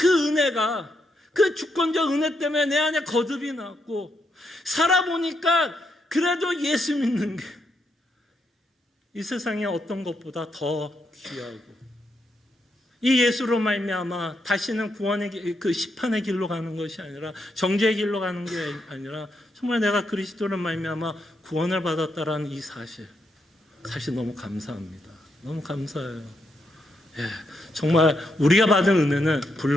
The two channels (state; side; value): normal; both; correlation 0.80